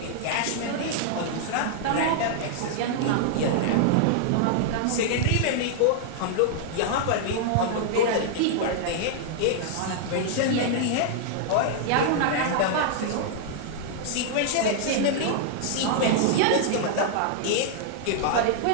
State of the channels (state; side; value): different; both; correlation 0.00